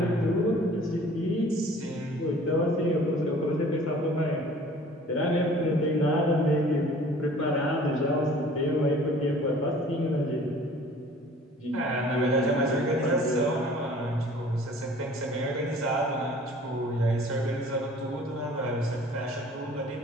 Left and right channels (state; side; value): normal; both; correlation 0.50